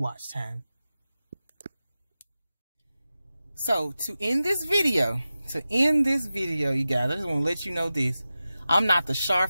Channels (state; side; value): inverted; both; correlation -0.94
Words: time. So to end this video, you guys, I just want to let you know this. I'm not the